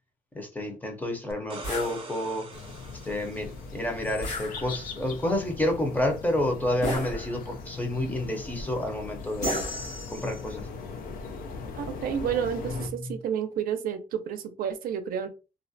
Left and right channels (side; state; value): both; normal; correlation 0.58